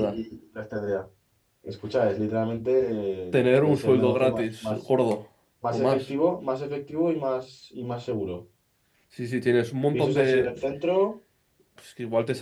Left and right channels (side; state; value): both; identical; correlation 1.00